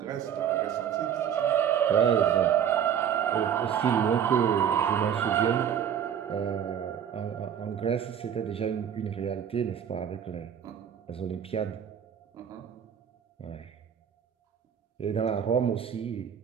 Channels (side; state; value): left; quieter; 8.7 dB